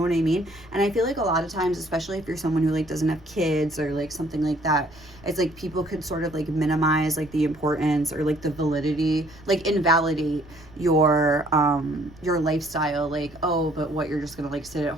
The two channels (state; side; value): noise; right; rumble, 23 dB below the sound